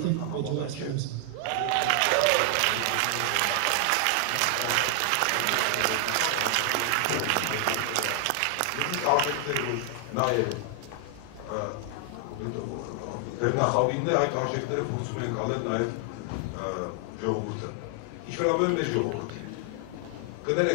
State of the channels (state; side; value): different; both; correlation 0.00